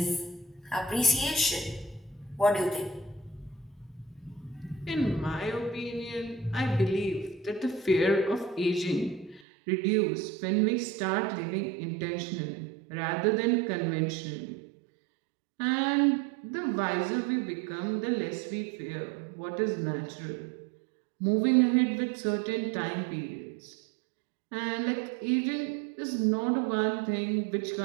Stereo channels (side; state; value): left; drops out; at 9.4 s